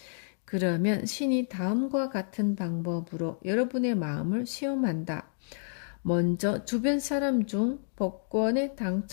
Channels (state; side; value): silent; right; digital silence